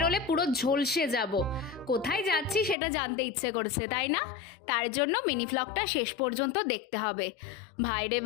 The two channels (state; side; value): drops out; right; at 2.8 s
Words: পুরো ঝলসে যাব। কোথায় যাচ্ছি সেটা জানতে ইচ্ছে করছে, তাই না? তার জন্য মিনি ভ্লগটা শেষ পর্যন্ত দেখতে হবে। ভাই রে